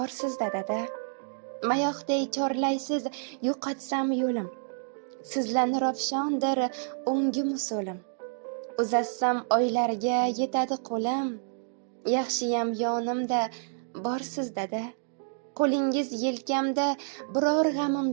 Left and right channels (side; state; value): left; silent; digital silence